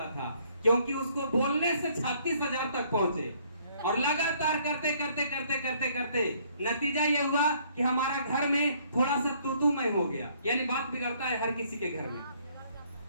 था, क्योंकि उसको बोलने से 36,000 तक पहुंचे। और लगातार करते नतीजा ये हुआ कि हमारा घर में थोड़ा सा तूतूमय हो गया। यानी बात बिगड़ता है, हर किसी के घर में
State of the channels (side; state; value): both; inverted; correlation -0.64